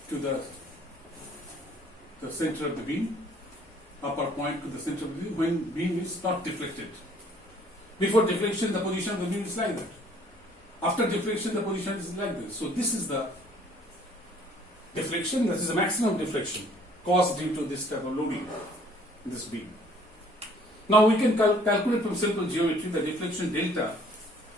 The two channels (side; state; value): both; normal; correlation 0.58